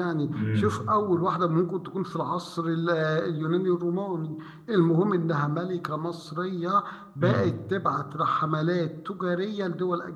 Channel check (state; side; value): identical; both; correlation 1.00